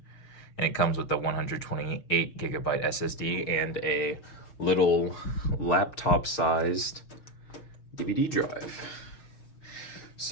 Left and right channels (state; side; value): late; right; 6.4 ms